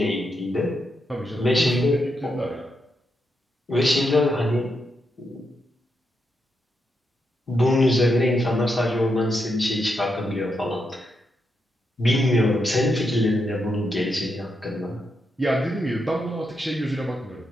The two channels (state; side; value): normal; both; correlation 0.83